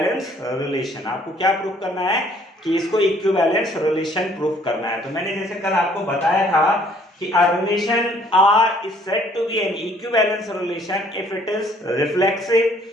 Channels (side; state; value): both; normal; correlation 0.60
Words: relation. आपको क्या प्रूफ करना है कि इसको इक्विवेलेंस रिलेशन प्रूफ करना है। तो मैंने जैसे कल आपको बताया था कि a relation R is said to be an equivalence relation if it is reflexive,